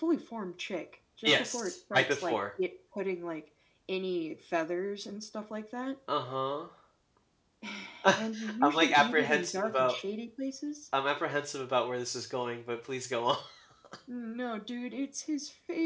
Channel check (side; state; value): both; identical; correlation 1.00